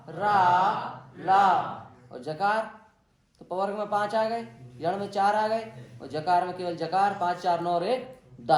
रा ला, और जकार तो पवर्ग में 5 आ गए, यण में 4 आ गए, और जकार में केवल जकार। 5 4 9 और 1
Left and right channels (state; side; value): identical; both; correlation 1.00